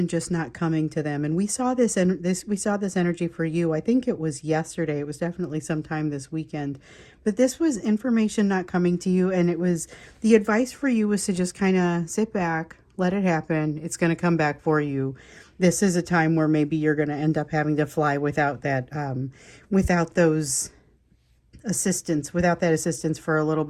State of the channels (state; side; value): identical; both; correlation 1.00